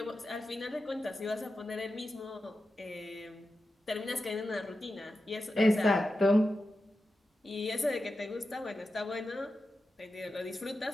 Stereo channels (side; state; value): both; normal; correlation 0.91